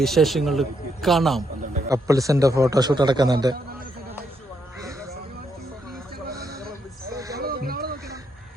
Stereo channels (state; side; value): normal; both; correlation 0.77